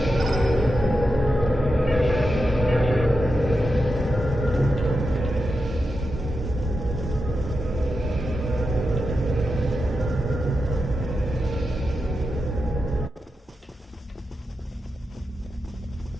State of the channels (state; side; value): normal; both; correlation 0.89